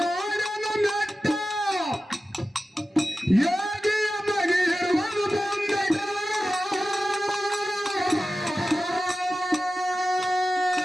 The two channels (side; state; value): both; normal; correlation 0.94